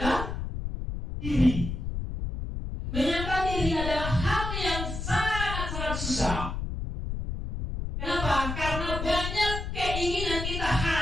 diri. Menyangkal diri adalah hal yang sangat-sangat susah. Kenapa? Karena banyak keinginan kita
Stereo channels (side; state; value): left; noise; rumble, 4 dB below the sound